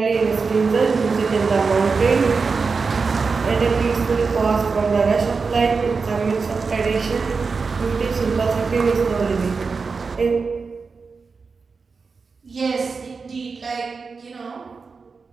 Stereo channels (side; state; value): left; quieter; 4.8 dB